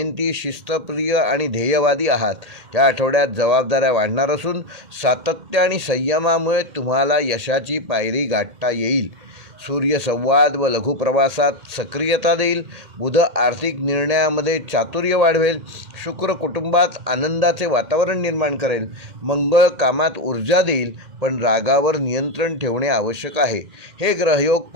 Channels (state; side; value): late; left; 2.1 ms